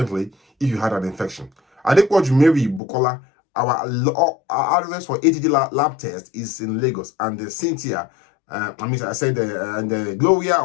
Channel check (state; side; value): drops out; right; at 2.8 s